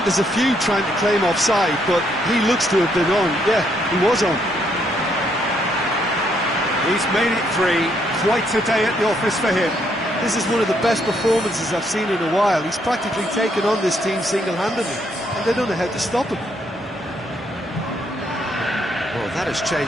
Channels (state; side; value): normal; both; correlation 0.72